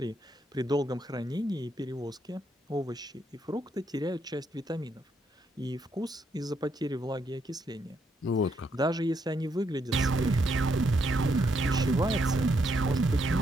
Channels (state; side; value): normal; both; correlation 0.77